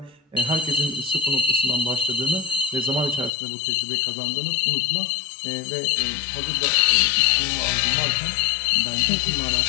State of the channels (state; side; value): drops out; right; at 3.3 s